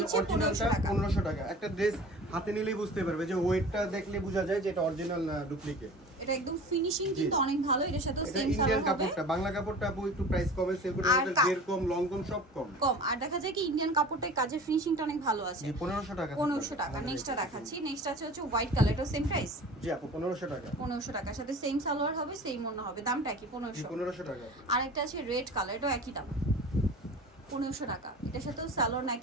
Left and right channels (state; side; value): normal; both; correlation 0.39